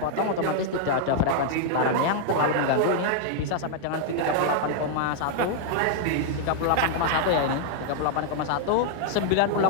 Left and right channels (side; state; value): both; different; correlation -0.01